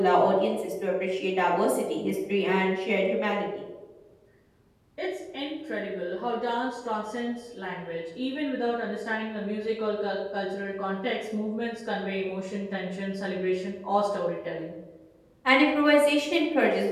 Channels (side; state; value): both; identical; correlation 1.00